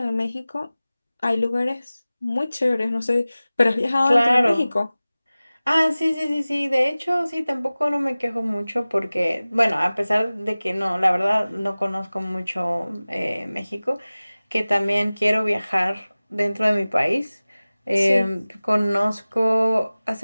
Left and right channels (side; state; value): both; inverted; correlation -0.98